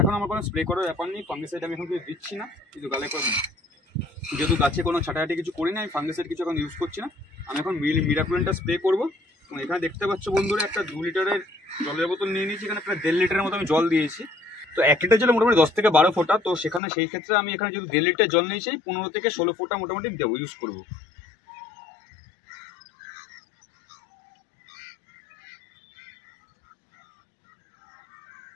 আমার কোনো স্প্রে করার ব্যাপার নেই, ফাঙ্গিসাইড আমি এখন কিছু দিচ্ছি না, কিন্তু গালে করে, যেহেতু গাছে কোনো ছাটাছাটি কিছু করি না, আমি ফাঙ্গিসাইড কিছু এখন ইউজ করছি না। আমি এখন মিরাকুলানটা স্প্রে করবো। এবং এখানে দেখতে পাচ্ছ বন্ধুরা একটা 2 লিটারের জলের বোতল নিয়ে নিয়েছি, এখানে প্রায় 1.5 লিটারের মতো আমি জল দিয়েছি। তো 1 লিটার জলে মোটামুটি 10 থেকে 12 ফোঁটা। তো সেখানে সেই ক্ষেত্রে আমি এখানে যদি 1.5 লিটার জল নিয়েছি, 15 থেকে 16 ফোঁটা মোটামুটি দেবো, ইউজ করবো।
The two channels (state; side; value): drops out; right; at 16.8 s